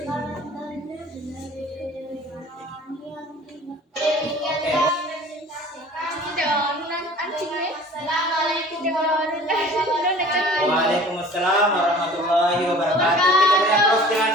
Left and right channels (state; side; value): normal; both; correlation 0.46